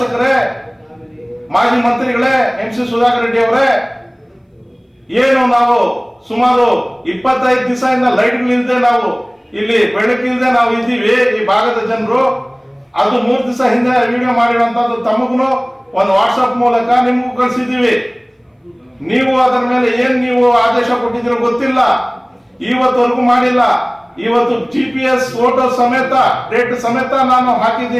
ಮಾಜಿ ಮಂತ್ರಿಗಳೇ, MC ಸುಧಾಕರ್ ರೆಡ್ಡಿ ಅವರೇ, ಏನು ನಾವು ಸುಮಾರು 25 ದಿವಸದಿಂದ ಲೈಟ್ಗಳಿಲ್ಲದೆ ನಾವು ಇಲ್ಲಿ ಬೆಳಕಿಲ್ಲದೆ ನಾವು ಇದ್ದೀವಿ ಈ ಭಾಗದ ಜನರು. ಅದು 3 ದಿವಸ ಹಿಂದೆ ವಿಡಿಯೋ ಮಾಡಿರುವಂತದ್ದು ತಮಗೂ ಒಂದು ವಾಟ್ಸಪ್ ಮೂಲಕ ನಿಮಗೂ ಕಳಿಸಿದ್ದೀವಿ. ನೀವು ಅದರ ಮೇಲೆ ಏನ್ ನೀವು ಆದೇಶ ಕೊಟ್ಟಿದ್ದೀರೋ ಗೊತ್ತಿಲ್ಲ, ಇವತ್ತವರೆಗೂ ಮಾಡಿಲ್ಲ. ಇವತ್ತು GPS ಫೋಟೋ ಸಮೇತ, ಡೇಟ್ ಸಮೇತ ನಾನು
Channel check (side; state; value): both; identical; correlation 1.00